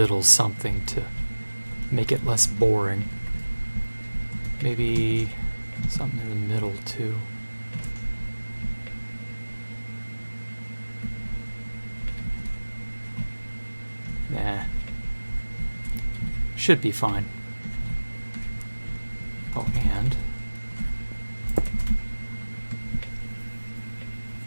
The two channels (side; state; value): both; inverted; correlation -1.00